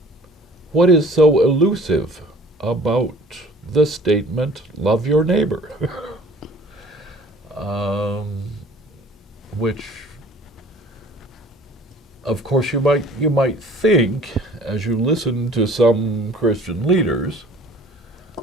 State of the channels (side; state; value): both; normal; correlation 0.49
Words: is so elusive about the statement, love your neighbor, which, of course, you might think, as you listen to some Christian leaders,